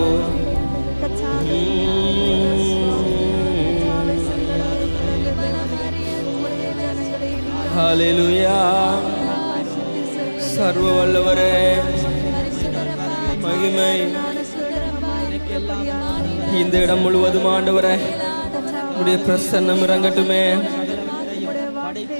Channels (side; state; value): both; inverted; correlation -1.00